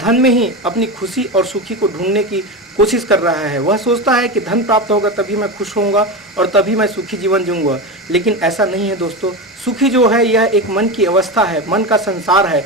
में ही अपनी खुशी और सुखी को ढूंढने की कोशिश कर रहा है। वह सोचता है कि धन प्राप्त होगा तभी मैं खुश होऊंगा और तभी मैं सुखी जीवन जीऊंगा। लेकिन ऐसा नहीं है दोस्तों। सुखी जो है यह एक मन की अवस्था है, मन का संसार है,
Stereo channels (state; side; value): normal; both; correlation 0.20